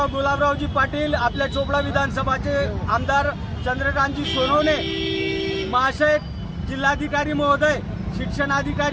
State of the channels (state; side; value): identical; both; correlation 1.00